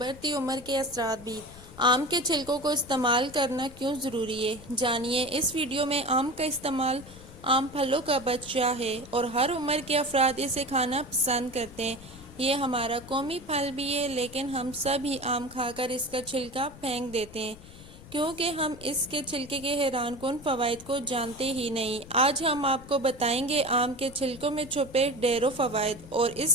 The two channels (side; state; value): left; noise; rumble, 18 dB below the sound